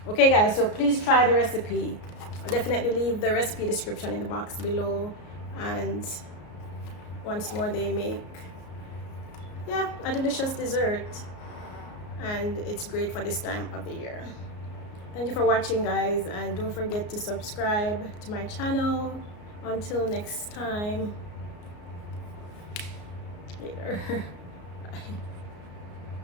Okay guys, so please try the recipe. I'll definitely leave the recipe description in the box below. And once more, they make, yeah, a delicious dessert, and it's great for this time of the year. Thank you for watching guys, and don't forget to subscribe to my channel. Until next time, later. Bye.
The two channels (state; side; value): late; right; 33 ms